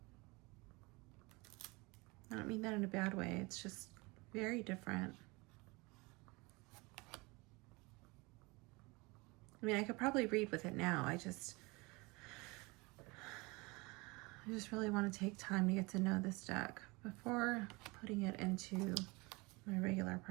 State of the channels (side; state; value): left; quieter; 25.5 dB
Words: I don't mean that in a bad way. It's just very different. I mean, I could probably read with it now. I just really want to take time to get to know this deck before putting it into my regular